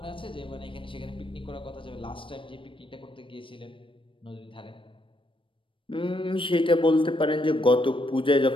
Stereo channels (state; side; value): late; right; 0.25 ms